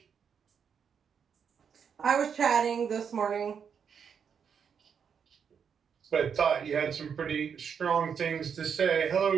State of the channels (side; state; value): left; quieter; 7.1 dB